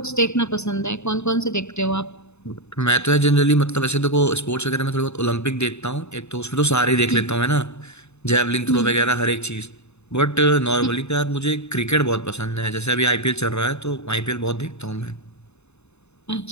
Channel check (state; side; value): late; right; 0.81 ms